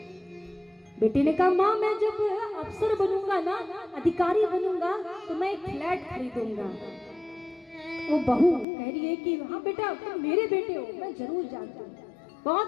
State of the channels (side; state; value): right; drops out; at 8.7 s